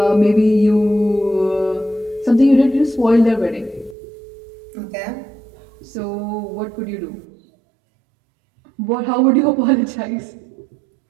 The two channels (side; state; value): left; drops out; at 4.0 s